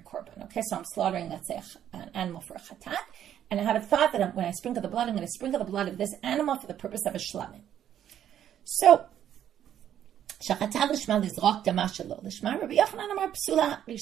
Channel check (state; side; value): quieter; left; 10.4 dB